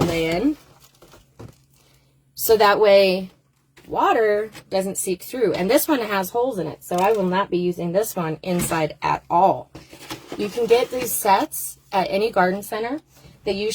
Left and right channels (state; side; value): identical; both; correlation 1.00